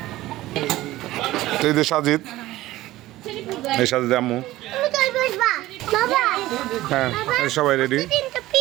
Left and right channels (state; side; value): quieter; left; 16.6 dB